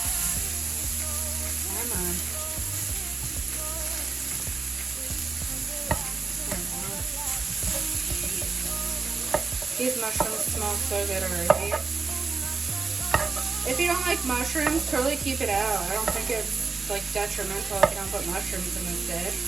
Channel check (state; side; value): quieter; left; 4.5 dB